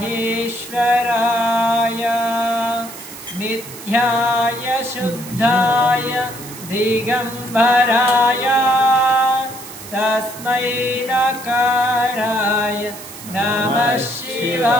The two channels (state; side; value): noise; right; hiss, 14 dB below the sound